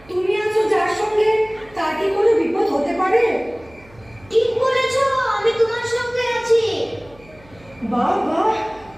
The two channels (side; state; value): right; noise; hum, 26 dB below the sound